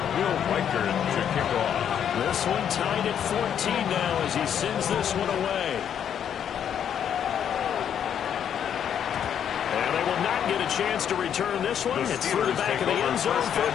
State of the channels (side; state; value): right; quieter; 8.9 dB